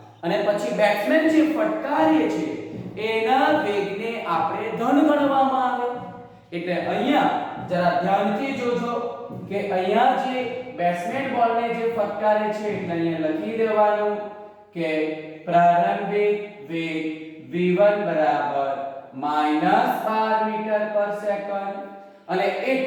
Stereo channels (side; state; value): both; identical; correlation 1.00